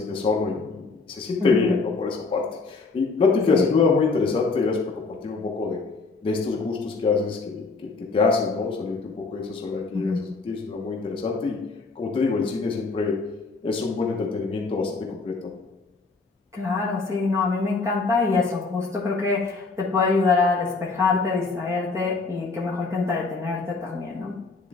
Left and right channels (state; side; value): quieter; right; 4.0 dB